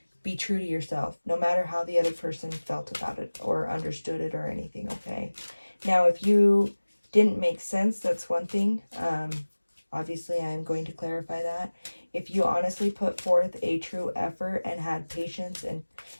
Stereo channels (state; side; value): inverted; both; correlation -1.00